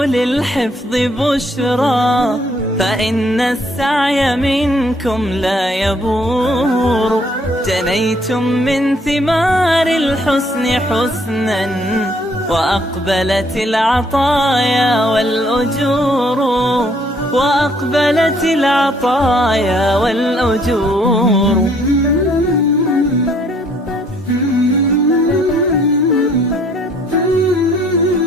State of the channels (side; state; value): both; normal; correlation 0.64